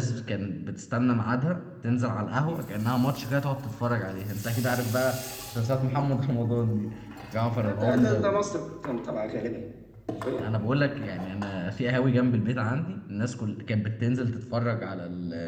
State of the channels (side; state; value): both; identical; correlation 1.00